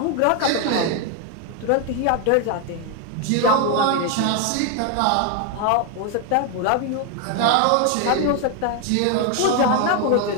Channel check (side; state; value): both; different; correlation 0.01